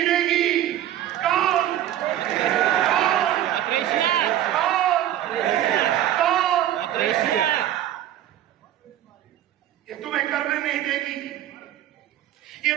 देगी। कौन? ये तुम्हें करने नहीं देगी, ये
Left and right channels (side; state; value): left; quieter; 12.1 dB